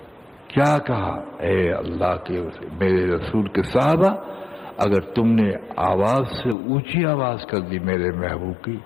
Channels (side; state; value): right; drops out; at 6.6 s